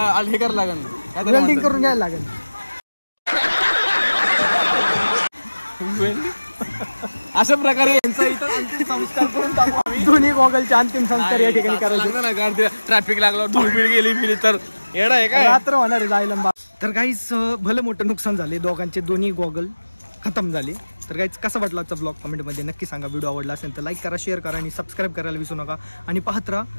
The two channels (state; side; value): inverted; both; correlation -1.00